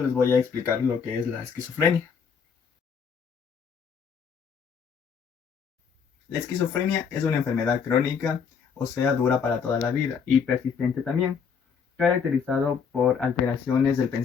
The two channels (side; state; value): right; quieter; 6.4 dB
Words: les voy a explicar lo que es la esquizofrenia. La esquizofrenia es una enfermedad crónica, o sea, dura para toda la vida y persistente también, caracterizado por alteraciones del